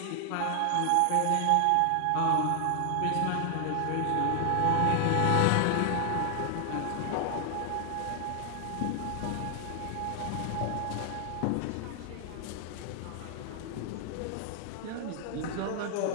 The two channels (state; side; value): different; both; correlation 0.00